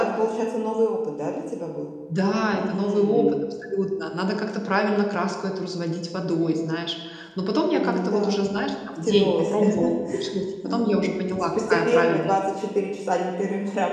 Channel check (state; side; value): identical; both; correlation 1.00